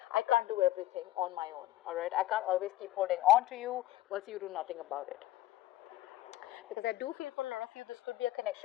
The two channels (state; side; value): quieter; right; 15.3 dB